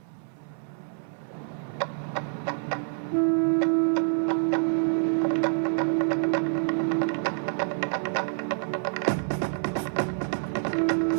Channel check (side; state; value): left; silent; 60 dB below the other